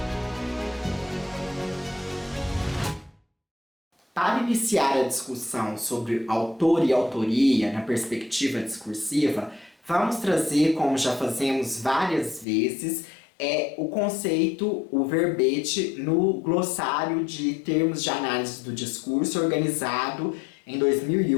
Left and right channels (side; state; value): right; drops out; at 12.5 s